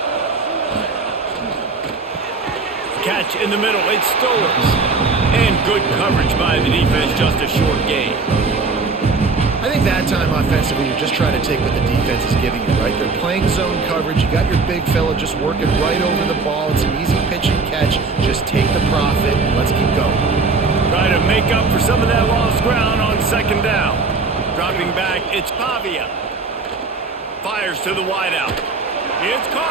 Catch in the middle, it's Stowers. And good coverage by the defense, just a short gain. I think that time offensively, you're just trying to take what the defense is giving you, right? They're playing zone coverage. You got your big fella just working right over the ball. It's an easy pitch and catch. Just take the profit and let's keep going. Try to make up for some of that lost ground on 2nd down. Dropping back, it's Pavia. Fires to the wideout. It's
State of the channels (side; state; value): left; quieter; 4.1 dB